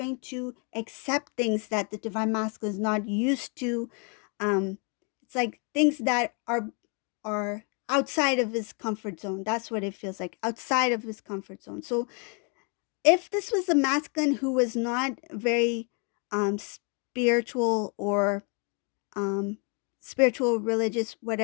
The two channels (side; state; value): right; quieter; 36.8 dB